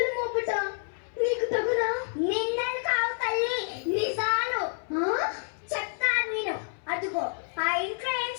మోపుట నీకు తగునా? నిందలు కావు తల్లి, నిజాలు. చెప్తాను నేను. అదిగో ఆ ఇంట్లో ఏం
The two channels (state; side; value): silent; right; 59 dB below the other